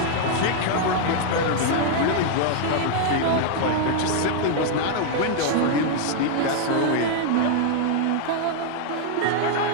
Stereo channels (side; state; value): both; different; correlation 0.00